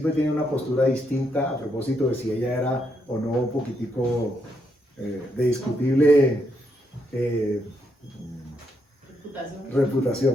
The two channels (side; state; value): both; normal; correlation 0.78